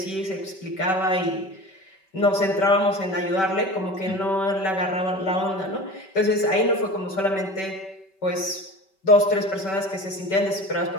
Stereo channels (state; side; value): late; right; 5.2 ms